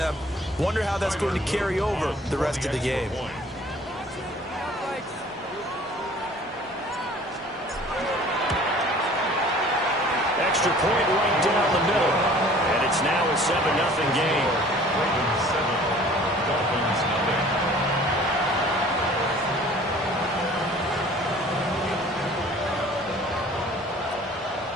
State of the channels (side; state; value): both; normal; correlation 0.50